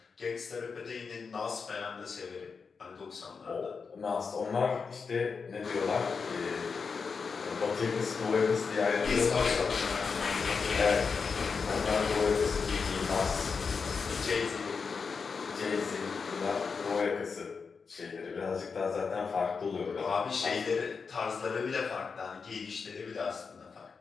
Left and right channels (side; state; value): right; quieter; 5.3 dB